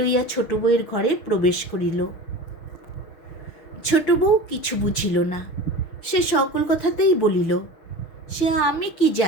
ছোট বউয়ের ঘরে প্রবেশ করিল। ছোট বউ কিছু বুঝিল না। সে সকল কথাতেই বলিল, সে আমি কি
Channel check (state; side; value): late; right; 6.4 ms